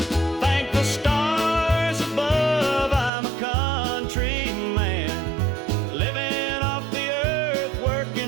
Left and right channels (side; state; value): left; drops out; at 3.1 s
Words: Thank the stars above, I'm a country man, living off the earth,